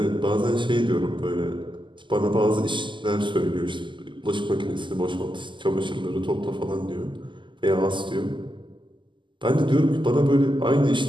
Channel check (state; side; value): late; left; 0.24 ms